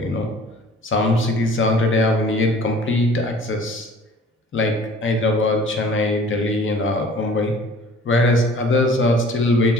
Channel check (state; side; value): normal; both; correlation 0.49